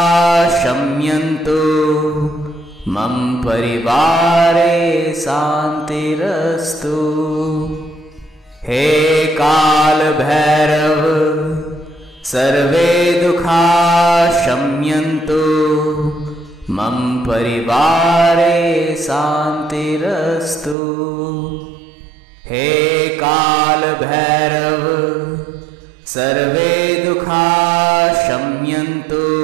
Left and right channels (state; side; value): drops out; left; at 20.8 s